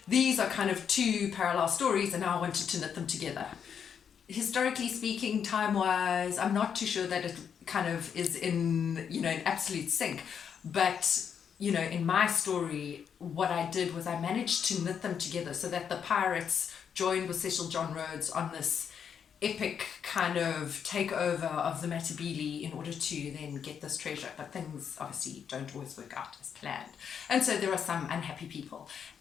these are kind of two parallel stories, and now I wanted to knit them together. Historically speaking, time-wise, I'm not too sure that it kind of is in absolute sync. But, in my story, what I did was I managed to knit them together so that the pirates joined with Cecil John Rhodes on this epic kind of takeover of the Matabele in order to then get this treasure. But things obviously don't always work out as planned. And so there are some unhappy people.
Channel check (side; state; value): right; quieter; 7.6 dB